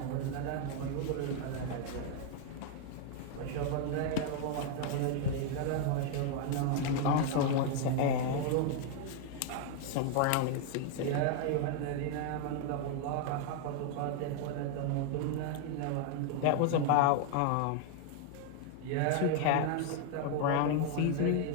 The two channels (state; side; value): different; both; correlation 0.00